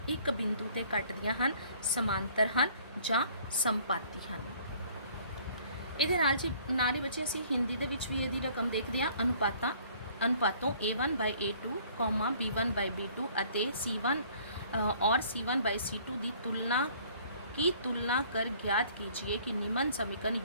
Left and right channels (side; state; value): both; inverted; correlation -0.56